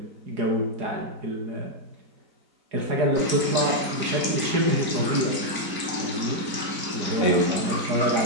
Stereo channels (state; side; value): late; left; 4.4 ms